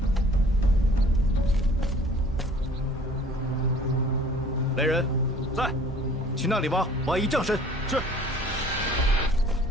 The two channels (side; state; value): both; normal; correlation 0.52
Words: 来人，在。去那里挖一丈深。是。